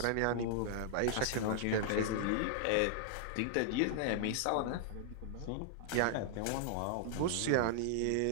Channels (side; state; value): both; different; correlation -0.01